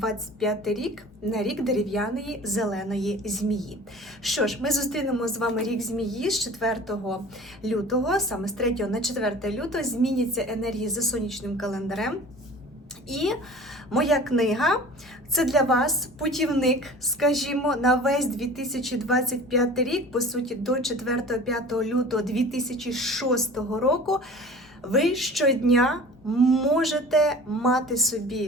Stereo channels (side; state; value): both; normal; correlation 0.42